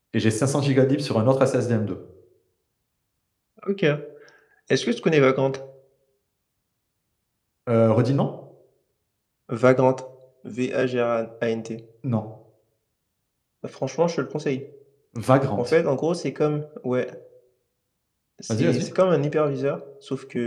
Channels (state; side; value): identical; both; correlation 1.00